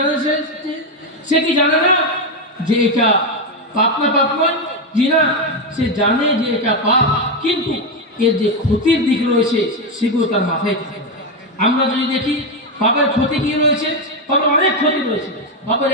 কি জানে না যে এটা পাপ না পাপ নয়? জি না, সে জানে যে এটা পাপ, কিন্তু এর যে ক্ষতির দিক রয়েছে সেগুলো তার মাথায় থাকে। আমরা যদি দেখি পাপের ক্ষতি কি রয়েছে, পাপের অনেক ক্ষতি রয়েছে। পাপের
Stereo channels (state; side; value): normal; both; correlation 0.08